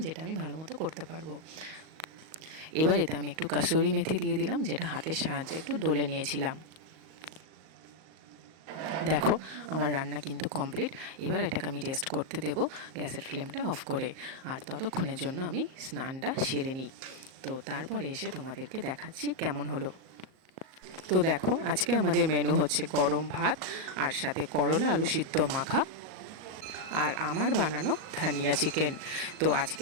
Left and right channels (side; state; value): left; late; 38 ms